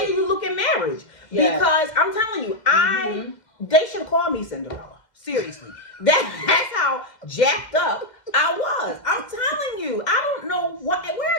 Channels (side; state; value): right; late; 2.1 ms